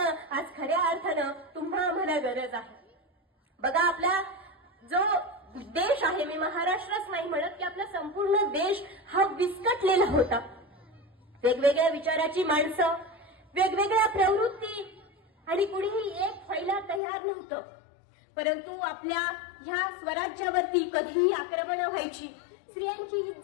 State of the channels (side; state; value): right; drops out; at 17.0 s